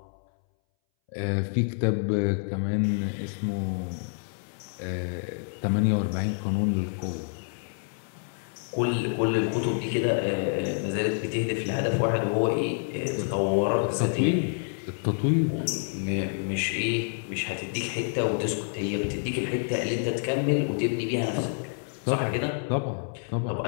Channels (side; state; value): right; silent; 59 dB below the other